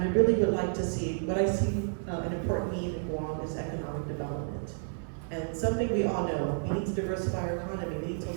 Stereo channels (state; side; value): silent; left; 57 dB below the other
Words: I really would like to see, what I see an important need in Guam is economic development. And something we all know, we need to diversify our economy, we need to